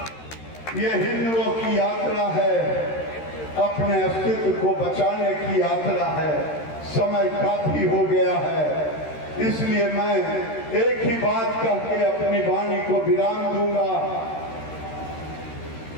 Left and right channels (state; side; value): late; right; 13 ms